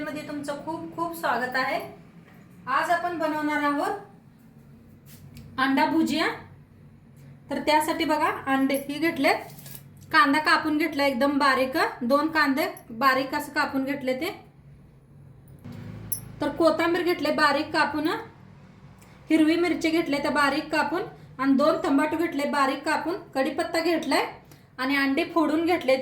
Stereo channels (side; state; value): both; identical; correlation 1.00